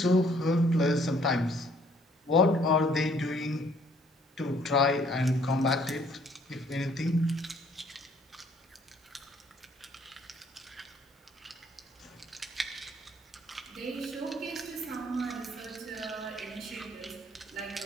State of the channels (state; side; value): normal; both; correlation 0.61